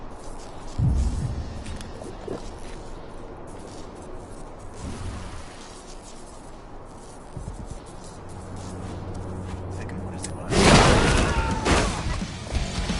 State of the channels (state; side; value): identical; both; correlation 1.00